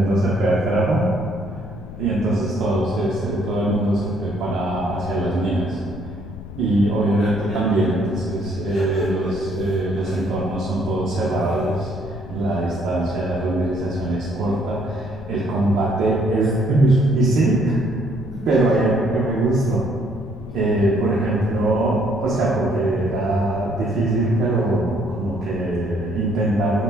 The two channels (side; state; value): left; noise; rumble, 13 dB below the sound